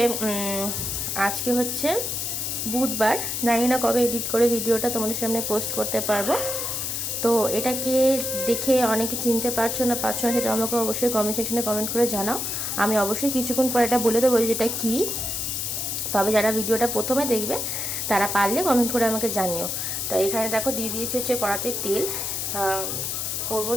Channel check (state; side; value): noise; left; hiss, 2 dB below the sound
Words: আজকে হচ্ছে বুধবার। জানি না কবে এডিট করে ভিডিওটা তোমাদের সামনে পোস্ট করতে পারবো। তো এটাকে দেখে অনেকে চিনতে পারছো না সেটা আমাকে অবশ্যই কমেন্ট সেকশনে কমেন্ট করে জানাও। আমি অবশ্যই কিছুক্ষণ পরে এটা বলে দেবো যেটা কী। তবে যারা ভিডিওটা প্রথমে দেখবে তারা পারলে কমেন্ট করে আমাকে জানিও। তো এখানে দেখো দিয়ে দিয়েছে হচ্ছে কড়াতে তেল। করবো